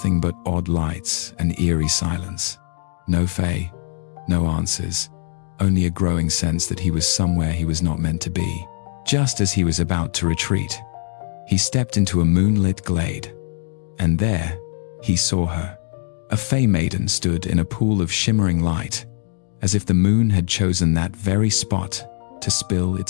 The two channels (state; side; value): silent; right; 57 dB below the other